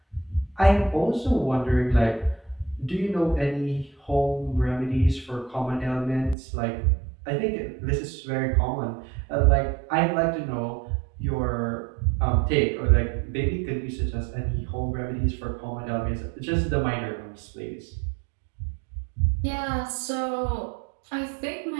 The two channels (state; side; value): drops out; left; at 6.4 s